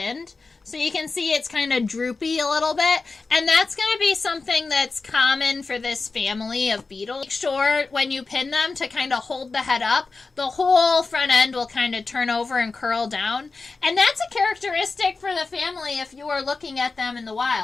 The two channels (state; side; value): quieter; right; 4.0 dB